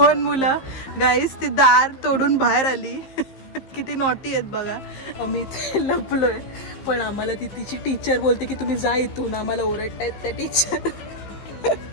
मुलं गाईस ती दार तोडून बाहेर आली. किती नॉटी आहेत बघा. मी लपलोय पण आम्हाला ती तिची टीचर बोलते की तुम्ही जा इथून, आम्हाला ओरडतायत त्या teacher.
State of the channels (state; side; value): late; right; 15 ms